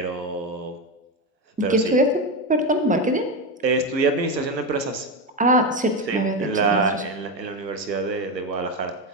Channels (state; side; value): normal; both; correlation 0.14